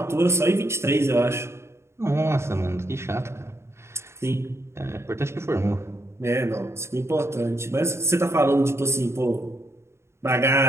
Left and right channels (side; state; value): left; late; 0.13 ms